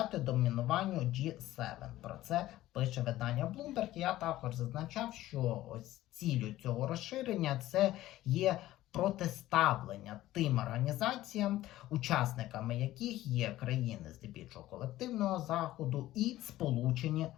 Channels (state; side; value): quieter; right; 15.3 dB